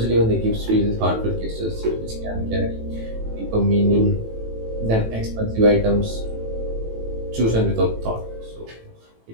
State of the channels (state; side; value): late; left; 18 ms